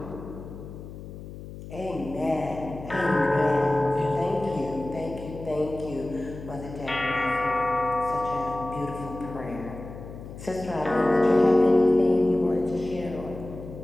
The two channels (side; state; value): left; noise; hum, 13 dB below the sound